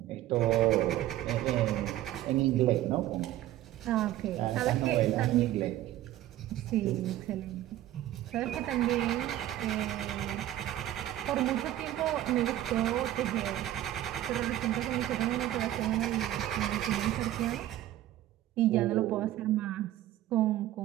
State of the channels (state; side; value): quieter; left; 13.7 dB